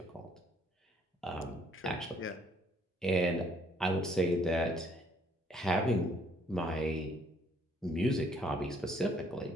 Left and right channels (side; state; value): both; normal; correlation 0.65